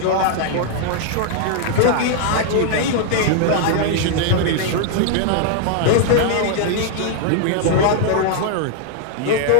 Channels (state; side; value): different; both; correlation -0.01